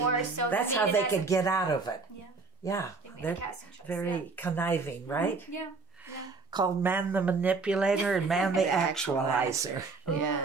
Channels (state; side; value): quieter; left; 4.2 dB